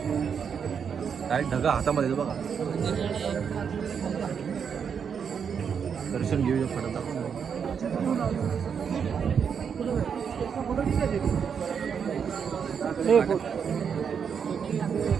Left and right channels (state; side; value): quieter; left; 7.0 dB